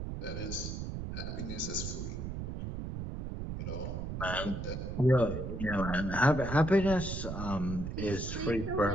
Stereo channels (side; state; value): right; noise; rumble, 5 dB below the sound